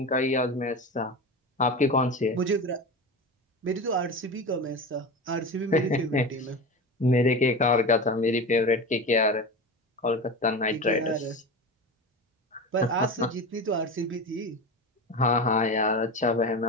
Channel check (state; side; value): normal; both; correlation 0.26